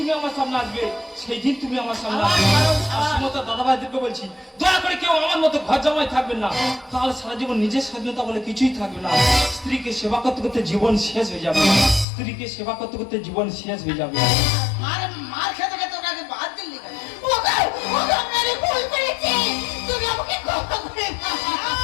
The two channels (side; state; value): right; drops out; at 12.1 s